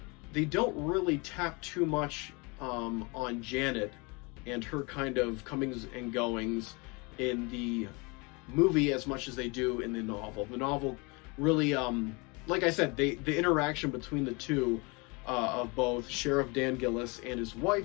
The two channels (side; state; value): right; quieter; 28.7 dB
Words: don't really tap too much on Janet and her kind of comings and goings in the movie as much as they do in the novel. The novel really, like I said, the interaction between the two, of both Sheriff Dan Gillis and his